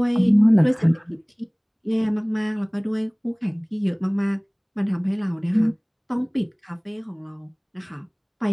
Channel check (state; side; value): identical; both; correlation 1.00